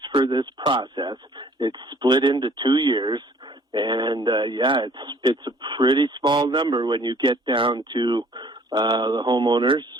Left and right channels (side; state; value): both; normal; correlation 0.56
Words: for this process. It's split into 2 years, and it's a pretty small number when you get down to the homeowners.